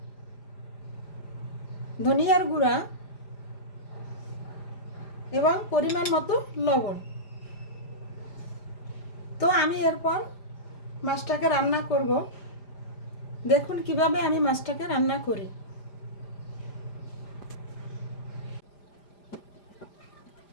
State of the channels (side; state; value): right; late; 5.0 ms